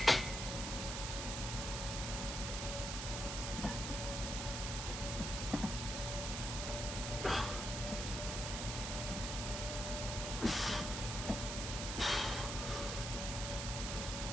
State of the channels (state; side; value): noise; right; hiss, 3 dB below the sound